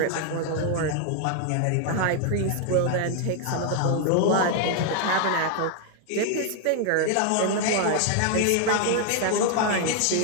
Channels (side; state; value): both; different; correlation 0.00